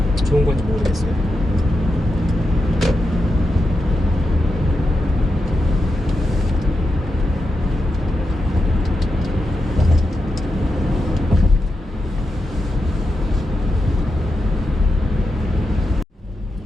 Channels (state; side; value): normal; both; correlation 0.87